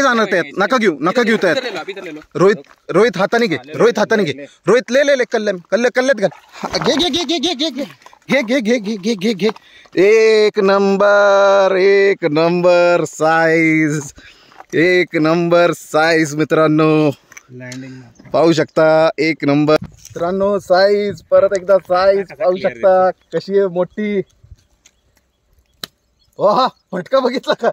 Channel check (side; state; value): both; identical; correlation 1.00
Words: जाणार त्यात. नका घेऊ नका घेऊ त्यात. इधर ले लो, अभी इधर ले लो. रोहित हाताने घे, रोहित हाताने घे. रोहित ले ले ले कल्ल्यात घाल. घे घे घे घे घे घे घे घे घे घे घे घे घे. एक नंबर, एक नंबर साईज, एक नंबर साईज मित्रांनो. लँडिंग पाहू शकता एक नंबर मित्रांनो साईज. परत एकदा साईज पाहू शकता कशी आहे मोठी. हा फटका बघितला का?